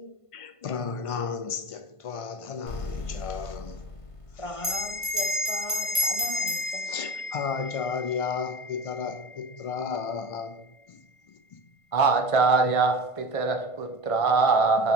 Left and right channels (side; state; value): right; late; 1.5 ms